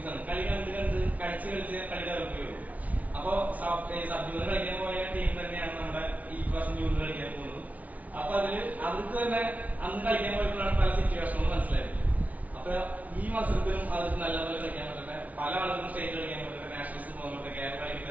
ആണ്. കളി കണ്ട് കളിച്ച് കളി ഡെവലപ്പ് ചെയ്യുള്ളൂ. അപ്പൊ സബ്ജൂണിയർ കളിക്കാൻ പോയ ടീം തന്നെയാണ് നമ്മുടെ ഈ പ്രാവശ്യം ജൂണിയർ കളിക്കാൻ പോകുന്നത്. അപ്പൊ അവർക്ക് തന്നെ അന്ന് കളിക്കാൻ പോയപ്പോഴാണ് പല സിറ്റുവേഷനുകളും മനസ്സിലായത്. അപ്പൊ ഈ മത്സരത്തിലും അവർക്ക് നല്ലപോലെ കളിക്കാൻ പറ്റട്ടെ. പല ആളുകളും സ്റ്റേറ്റ് കളിക്കാൻ പറ്റട്ടെ, നാഷണൽസ് പോകാൻ പറ്റട്ടെ, കേരള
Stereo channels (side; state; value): left; late; 0.071 ms